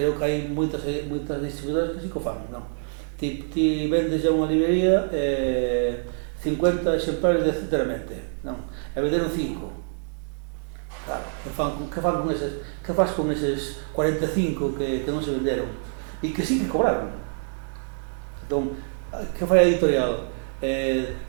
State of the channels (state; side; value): silent; left; digital silence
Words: que hai moitas distribuidoras que sí que o fan, non? Ti vendes a unha librería 50 exemplares de Centramente, non? E venderon 5. Claro, que faz con eses 45 que non se venderon? E que sí que cobraron. Entón, que fai a editorial?